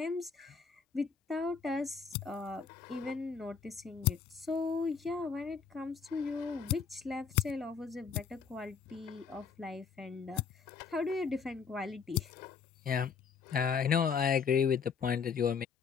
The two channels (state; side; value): quieter; right; 6.1 dB